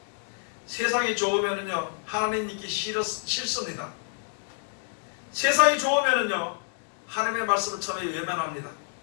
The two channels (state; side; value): silent; right; 59 dB below the other